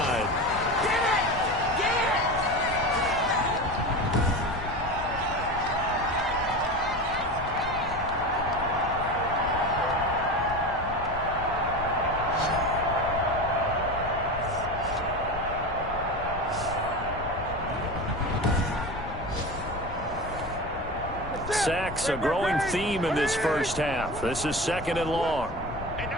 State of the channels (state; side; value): noise; left; rumble, 11 dB below the sound